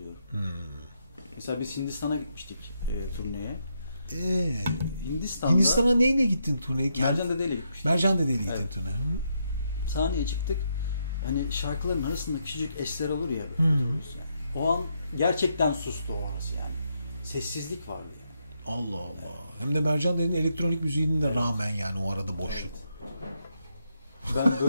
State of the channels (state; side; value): inverted; both; correlation -0.79